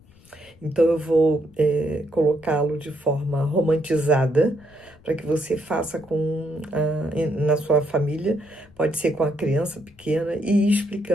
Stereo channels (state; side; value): noise; left; rumble, 27 dB below the sound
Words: Então, eu vou colocá-lo de forma romantizada, para que você faça na sua família, pode ser com a criança pequena, e ir